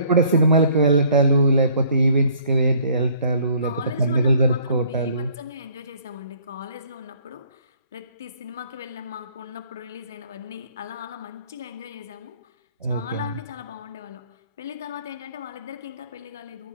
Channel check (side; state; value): both; inverted; correlation -0.58